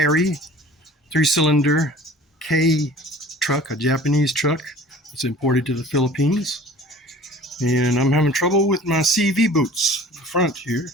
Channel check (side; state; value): both; normal; correlation 0.46